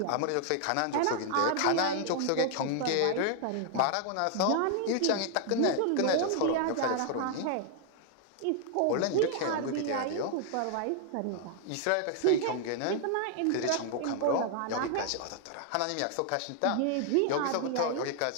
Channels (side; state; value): both; different; correlation 0.00